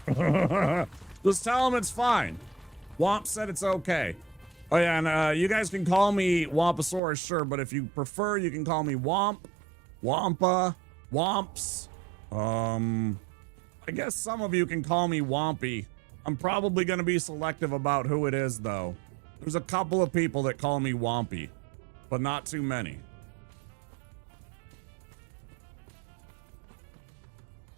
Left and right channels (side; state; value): left; drops out; at 7.0 s